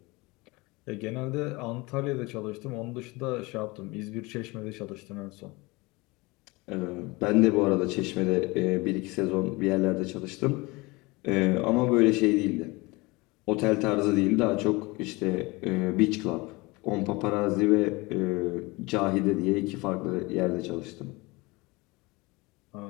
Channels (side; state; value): right; quieter; 24.1 dB